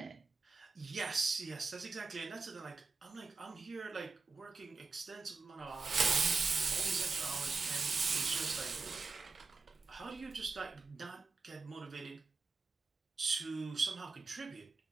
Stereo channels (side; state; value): left; quieter; 4.2 dB